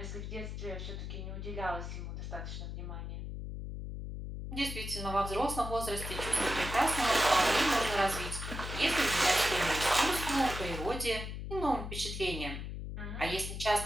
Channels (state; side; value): noise; left; hum, 6 dB below the sound